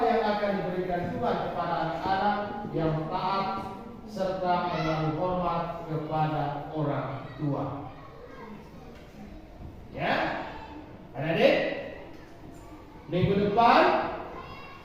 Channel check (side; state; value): both; identical; correlation 1.00